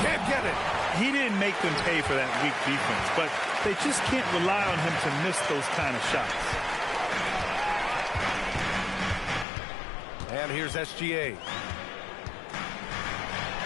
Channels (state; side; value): drops out; right; at 9.5 s